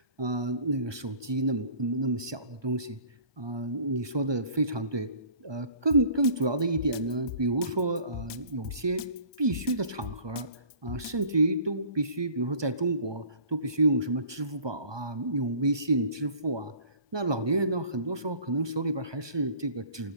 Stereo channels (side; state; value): left; late; 1.2 ms